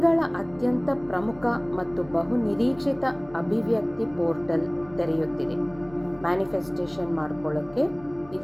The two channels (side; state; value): left; noise; hum, 22 dB below the sound